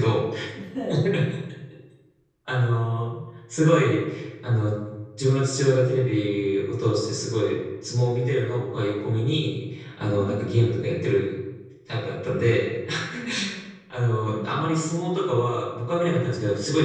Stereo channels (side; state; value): both; identical; correlation 1.00